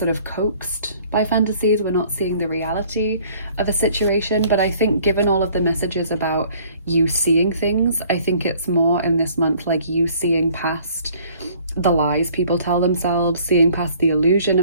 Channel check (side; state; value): both; inverted; correlation -0.56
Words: of coaxed by fantasies. We're not seeing the reality of a situation, but I think given all of the messages about you seeing things, I think it's more in this month like you seeing past the lies people tell themselves, seeing past the illusion